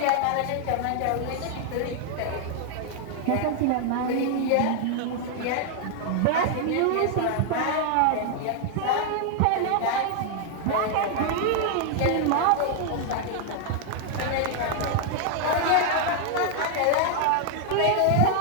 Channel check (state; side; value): different; both; correlation 0.00